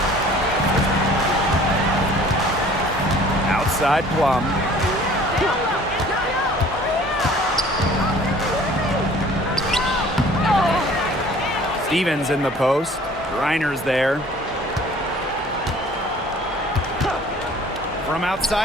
Outside Plum. Stevens in the post. Reiner's there. From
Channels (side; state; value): both; normal; correlation 0.51